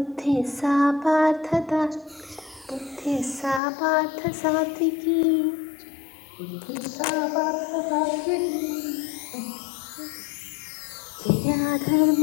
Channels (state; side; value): drops out; right; at 3.6 s